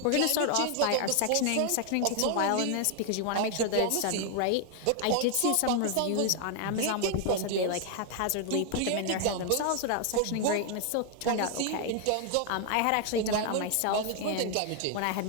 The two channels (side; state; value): both; different; correlation 0.00